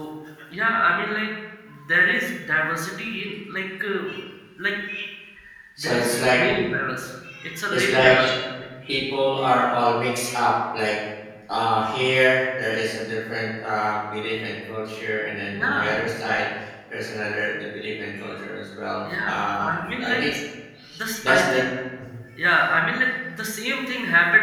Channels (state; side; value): identical; both; correlation 1.00